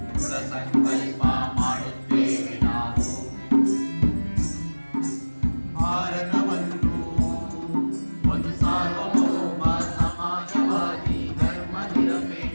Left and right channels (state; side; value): inverted; both; correlation -1.00